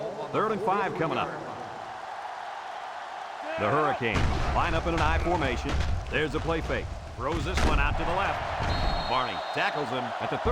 3rd and 5 coming up. The Hurricanes line up in an I formation. There's the play fake. Throws this one out to the left. Barney tackles him at the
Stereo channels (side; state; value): both; identical; correlation 1.00